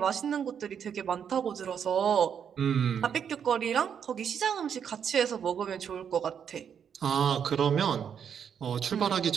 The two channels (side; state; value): left; quieter; 7.9 dB